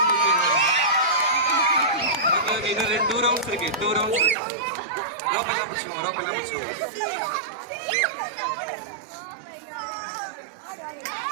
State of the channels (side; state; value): left; drops out; at 4.4 s